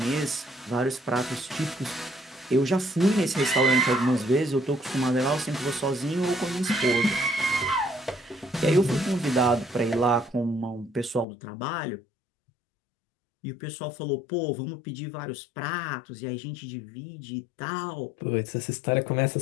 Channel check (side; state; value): right; drops out; at 11.2 s